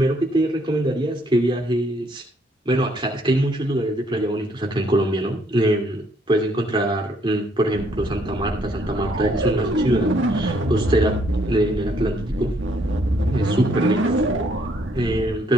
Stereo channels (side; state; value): both; normal; correlation 0.68